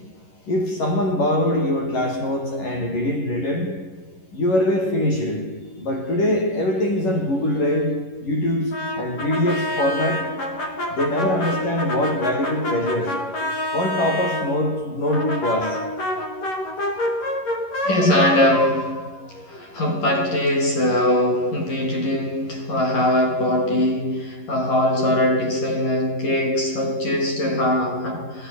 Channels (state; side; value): late; right; 11 ms